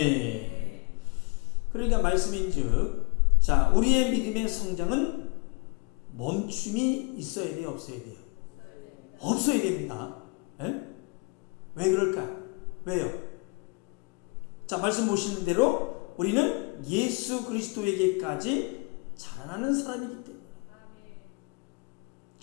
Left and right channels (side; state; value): right; quieter; 30.7 dB